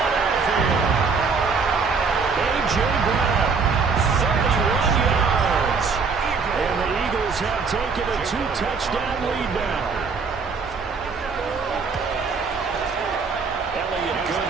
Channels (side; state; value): left; quieter; 5.0 dB